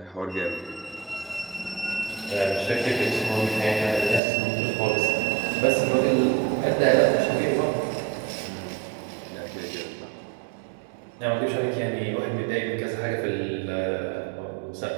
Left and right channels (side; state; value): left; drops out; at 4.2 s